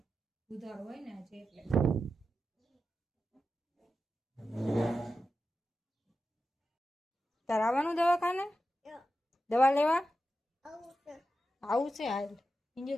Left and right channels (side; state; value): both; normal; correlation 0.91